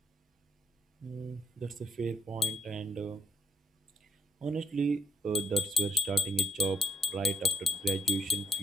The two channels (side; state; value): both; normal; correlation 0.72